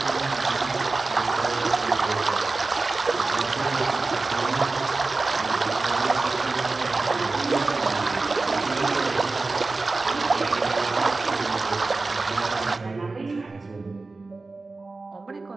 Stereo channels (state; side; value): quieter; left; 3.6 dB